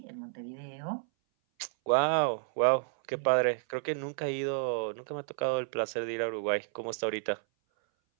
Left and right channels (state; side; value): silent; left; 57 dB below the other